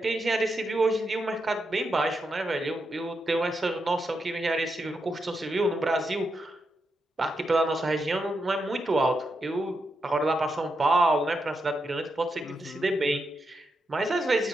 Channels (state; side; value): normal; both; correlation 0.85